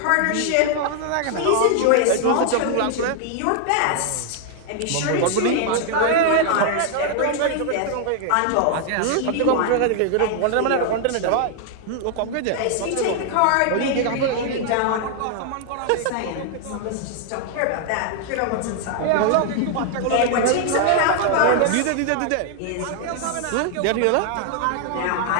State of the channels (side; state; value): both; different; correlation 0.00